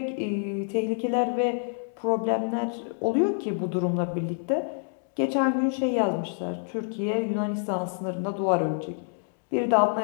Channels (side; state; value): right; silent; digital silence